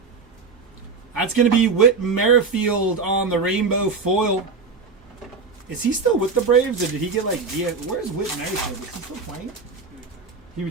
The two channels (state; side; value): quieter; left; 4.5 dB